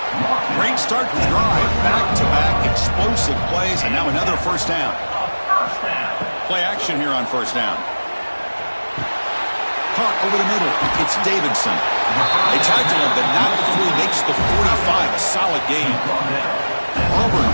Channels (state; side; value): inverted; both; correlation -1.00